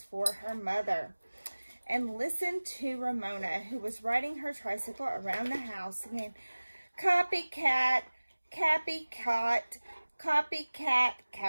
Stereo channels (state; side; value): inverted; both; correlation -1.00